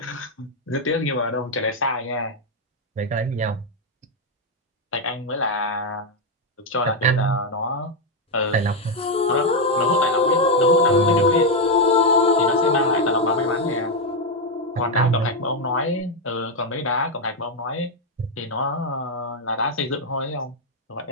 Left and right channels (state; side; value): normal; both; correlation 0.04